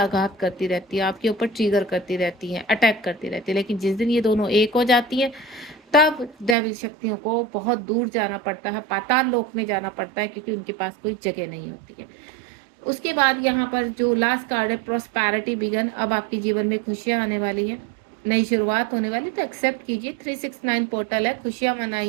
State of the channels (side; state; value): left; drops out; at 6.6 s